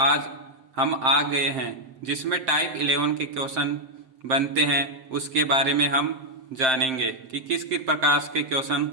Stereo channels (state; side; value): late; left; 7.6 ms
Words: हम आ गए हैं, जिसमें टाइप 11 के क्वेश्चन बनते हैं। उसके बारे में हम जानेंगे कि किस किस प्रकार के क्वेश्चन